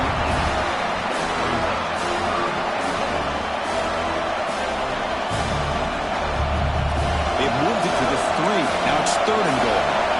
They've moved it to the 3. Now it's 3rd and goal.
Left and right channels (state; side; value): identical; both; correlation 1.00